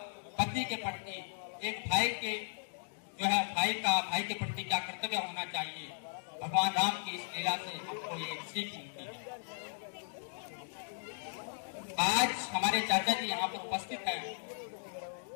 पति के प्रति, एक भाई के जो है भाई का भाई के प्रति क्या कर्तव्य होना चाहिए। भगवान राम की इस लीला से हमको ये सीख मिलती है। आज हमारे चाचा जी यहाँ पर उपस्थित हैं।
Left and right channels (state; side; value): silent; right; digital silence